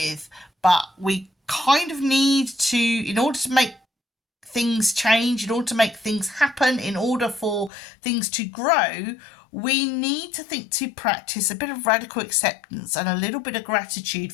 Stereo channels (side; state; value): right; drops out; at 7.7 s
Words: but we kind of need to, in order to make things change, in order to make things happen, in order for things to grow, we need to practice a bit of radical acceptance and a little bit of gratitude